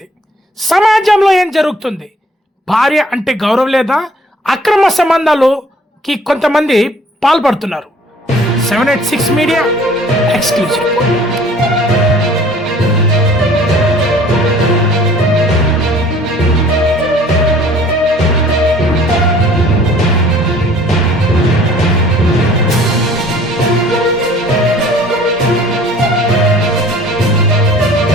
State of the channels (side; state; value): both; normal; correlation 0.53